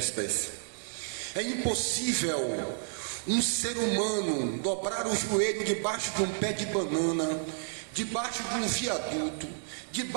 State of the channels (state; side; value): silent; left; digital silence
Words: É impossível um ser humano dobrar o joelho debaixo de um pé de banana, debaixo de um viaduto,